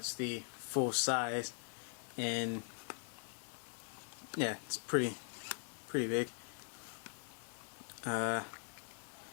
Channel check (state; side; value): silent; right; 50 dB below the other